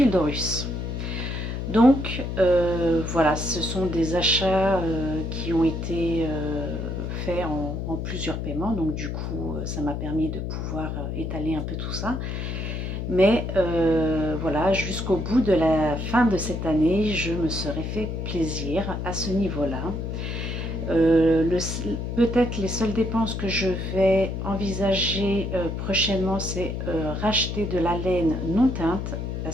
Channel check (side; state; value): left; noise; hum, 4 dB below the sound